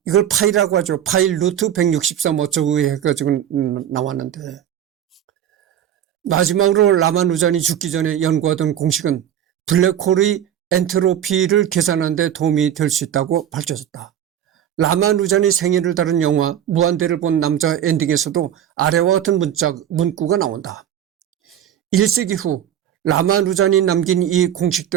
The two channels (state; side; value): quieter; left; 10.2 dB